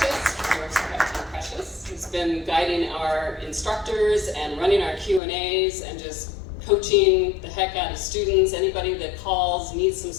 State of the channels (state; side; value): drops out; right; at 5.2 s